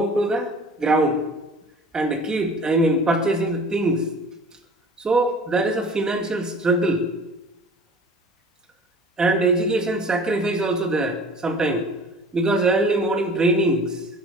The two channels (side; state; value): both; normal; correlation 0.44